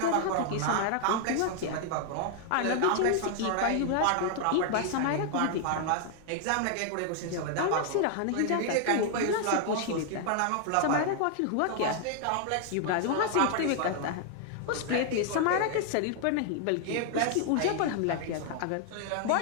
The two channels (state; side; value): different; both; correlation 0.00